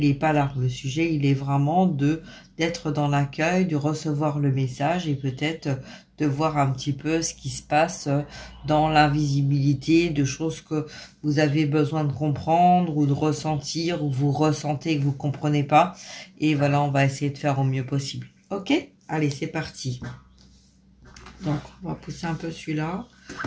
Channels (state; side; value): identical; both; correlation 1.00